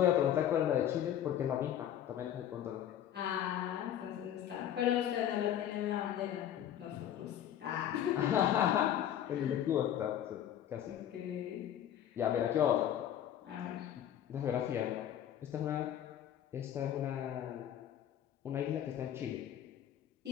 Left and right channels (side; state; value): right; quieter; 10.6 dB